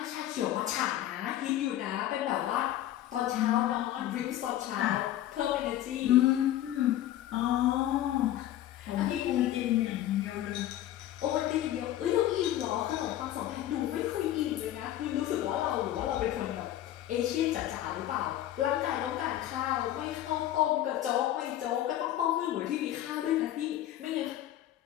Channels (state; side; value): quieter; right; 12.9 dB